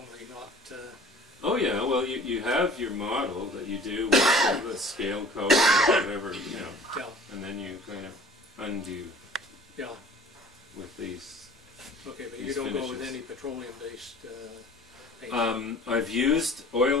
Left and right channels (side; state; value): both; normal; correlation 0.47